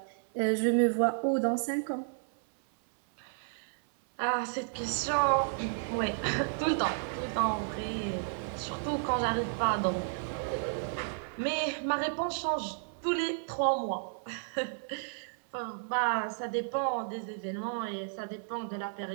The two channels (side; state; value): left; silent; 56 dB below the other